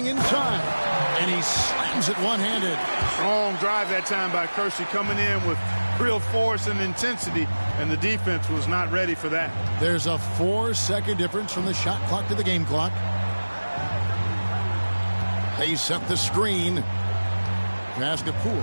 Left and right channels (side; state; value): both; inverted; correlation -1.00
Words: inside. And he slams it one-handed. Strong drive that time by Kersey, coming in with real force and intensity, and the defense was not ready for that. There's a 4-second difference from the shot clock to the game clock. They set the screen. Pass to